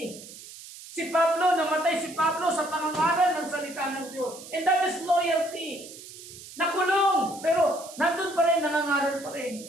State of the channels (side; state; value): right; noise; hiss, 16 dB below the sound